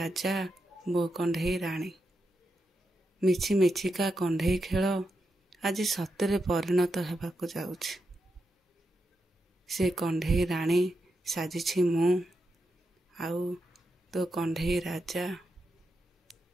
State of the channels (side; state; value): both; normal; correlation 0.86